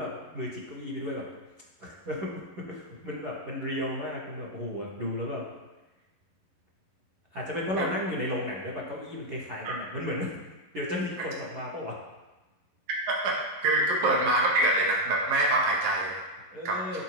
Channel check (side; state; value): left; late; 11 ms